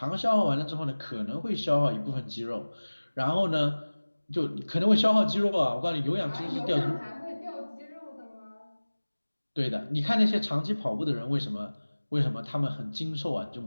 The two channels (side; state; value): both; inverted; correlation -1.00